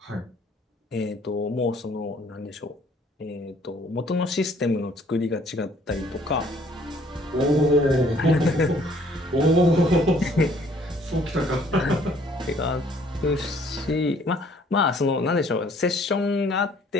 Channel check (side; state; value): both; normal; correlation 0.60